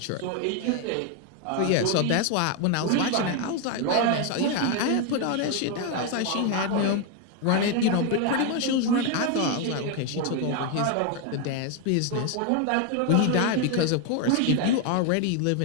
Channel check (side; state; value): both; different; correlation 0.01